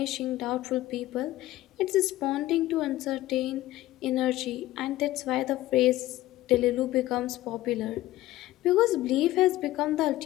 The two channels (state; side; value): quieter; right; 16.0 dB